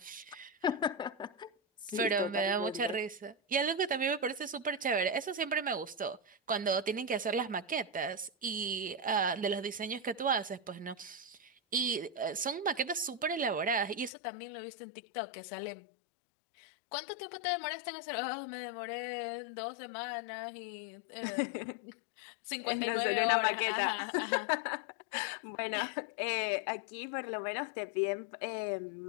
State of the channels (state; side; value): drops out; right; at 14.1 s